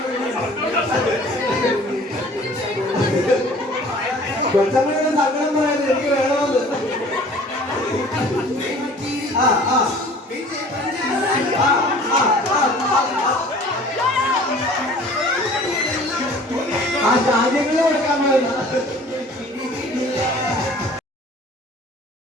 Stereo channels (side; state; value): both; normal; correlation 0.49